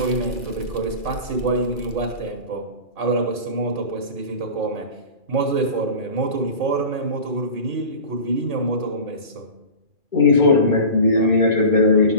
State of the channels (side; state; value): left; late; 2.0 ms